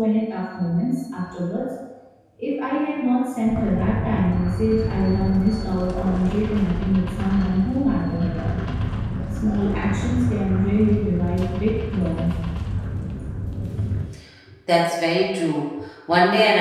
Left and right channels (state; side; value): identical; both; correlation 1.00